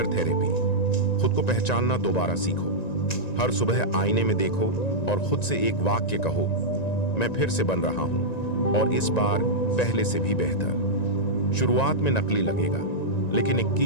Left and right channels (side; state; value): right; late; 1.9 ms